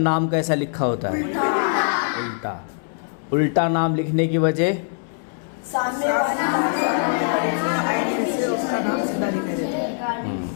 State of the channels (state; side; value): silent; right; 64 dB below the other